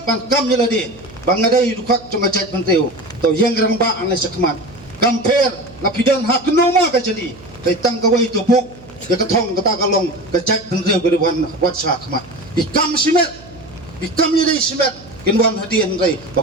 ban kam nyeladi bangadai dukak cuma jait menteu tau yang gerang ba anai sakmat kamper lapidan hak noma ka jadi dari tanggawai tupuk ya ketong kata kalong kejait menteu geriwan wat sakmat ikam simet ikam nyeladi simet kinwan hadian rai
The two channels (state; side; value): noise; right; hum, 21 dB below the sound